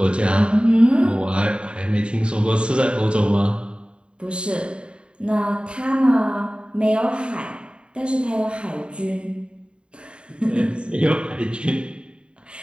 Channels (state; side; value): late; left; 0.054 ms